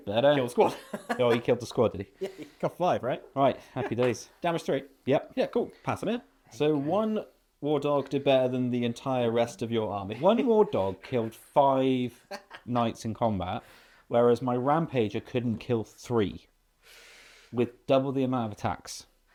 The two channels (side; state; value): both; identical; correlation 1.00